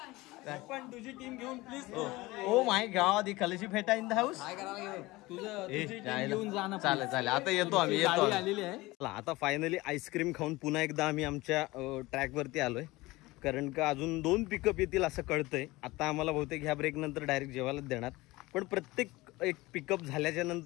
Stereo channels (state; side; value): quieter; right; 20.5 dB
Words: पण तुझी टीम घेऊन प्लीज. ओ माय गॉड, खलशी फेटा इन द हाऊस. घेऊन जा ना. चालेल आता येतो आम्ही आलेली आहे. आता फायनली आईस्क्रीम खाऊन पुन्हा एकदा आम्ही आमच्या ट्रॅक वरती आलोय. कारण का अजून 2 पिकअप येतील असं कळतंय. आता आम्हाला बहुतेक ह्या ब्रेक नंतर डायरेक्ट जेवायलाच देणार. पण प्रत्येक एक पिकअप झाल्याच्या